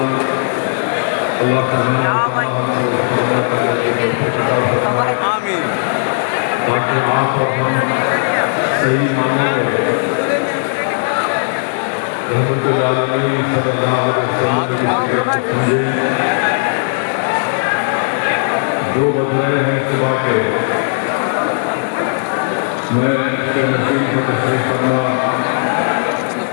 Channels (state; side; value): silent; right; digital silence